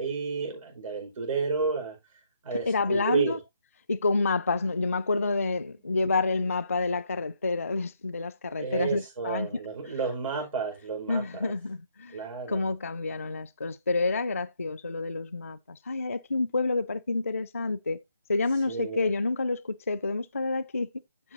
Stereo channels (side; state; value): both; inverted; correlation -0.74